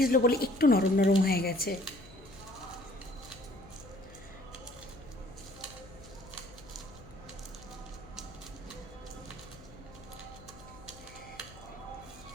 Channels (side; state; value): left; noise; hum, 19 dB below the sound